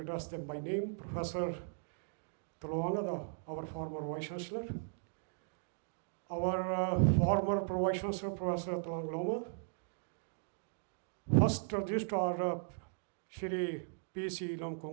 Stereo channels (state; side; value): silent; left; digital silence